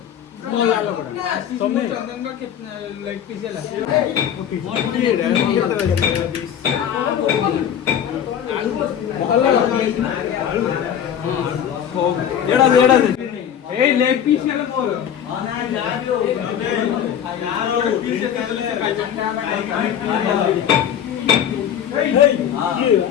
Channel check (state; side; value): quieter; right; 9.2 dB